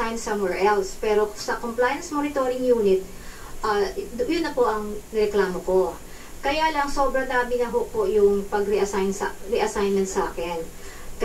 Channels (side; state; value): both; identical; correlation 1.00